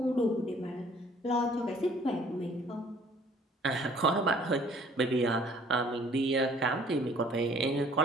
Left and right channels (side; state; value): both; normal; correlation 0.56